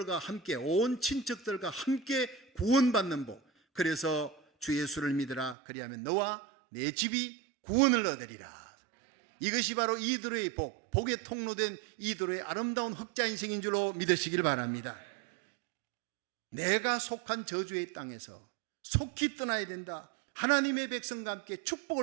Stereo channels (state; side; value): drops out; left; at 5.6 s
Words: 함께, 온 친척들과 함께 구원받는 복. 그래서 주 예수를 믿으라. 그리하면 너와 내 집이 구원을 얻으리라. 이것이 바로 이드로의 복, 복의 통로된 이드로의 아름다운 흑자 인생인 줄로 믿으시길 바랍니다. 내가 속한 저주의 땅에서 속히 떠나야 된다. 하나님의 백성과 함께